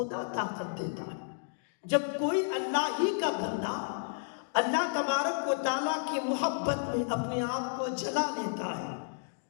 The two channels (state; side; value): silent; right; digital silence